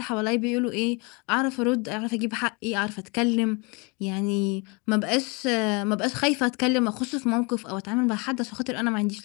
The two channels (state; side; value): quieter; right; 30.1 dB